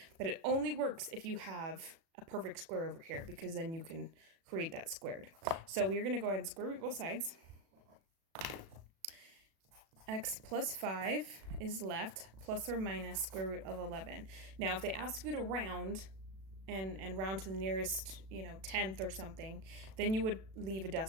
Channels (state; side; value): late; left; 36 ms